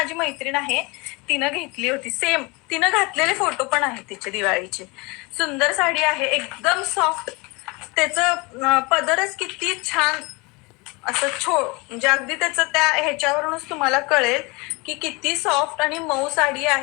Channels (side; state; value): right; quieter; 26.8 dB